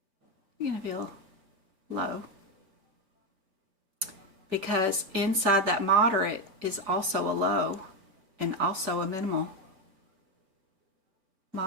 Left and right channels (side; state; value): left; late; 4.6 ms